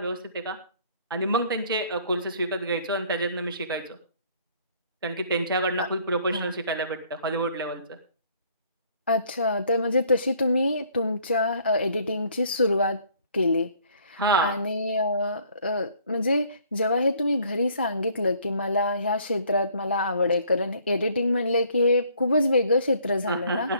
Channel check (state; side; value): inverted; both; correlation -0.60